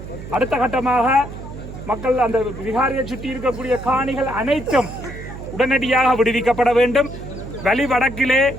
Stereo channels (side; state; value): right; noise; hum, 12 dB below the sound